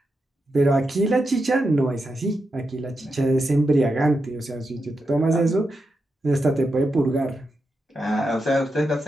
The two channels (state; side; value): normal; both; correlation 0.87